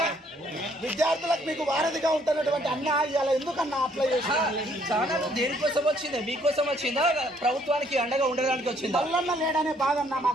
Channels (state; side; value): normal; both; correlation 0.66